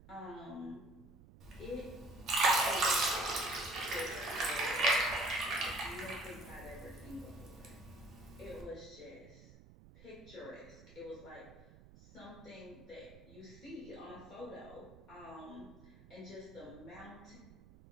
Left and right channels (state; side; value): noise; right; rumble, 20 dB below the sound